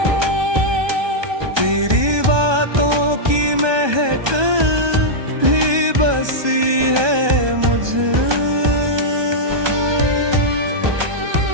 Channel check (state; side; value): late; left; 1.2 ms